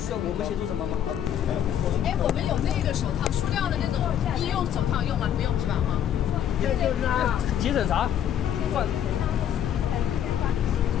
要我们协助什么吗？哎，我们有那个手套，塑料的那种医用手套用吗？不用是吧？哈。这就是啊。急诊啥？放。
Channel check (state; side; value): quieter; right; 10.0 dB